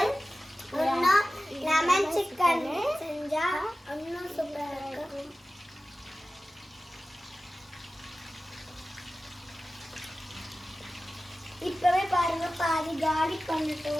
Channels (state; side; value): normal; both; correlation 0.95